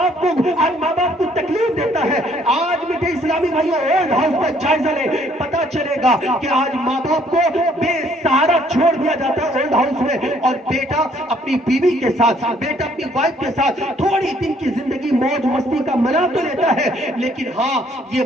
باپ کو تکلیف دیتا ہے۔ آج میٹھے اسلامی بھائیوں، اولڈ ہاؤس کا جائزہ لے، پتا چلے گا کہ آج ماں باپ کو بے سہارا چھوڑ دیا جاتا ہے اولڈ ہاؤس میں، اور بیٹا اپنی بیوی کے ساتھ، بیٹا اپنی وائف کے ساتھ تھوڑی دن کی زندگی موج مستی کا منا تو لیتا ہے، لیکن ہاں یہ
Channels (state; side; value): normal; both; correlation 0.64